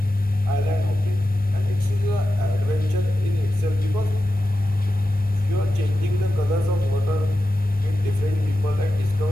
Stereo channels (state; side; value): normal; both; correlation 0.91